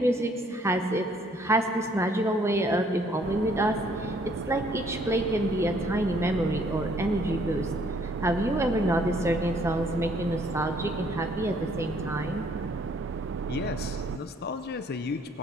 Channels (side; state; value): both; normal; correlation 0.64